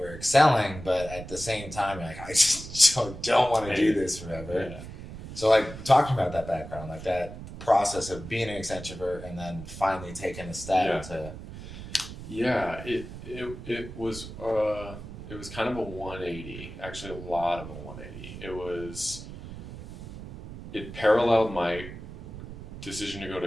excelling. But at the same time, you're like I just don't want to do this forever. Yeah. So like talking about that background, like that process of being an Accenture and then finally taking a step to. Yeah, it was kind of a 180. Actually, a lot of a 180. It paralleled my decision to go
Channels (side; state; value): right; noise; rumble, 12 dB below the sound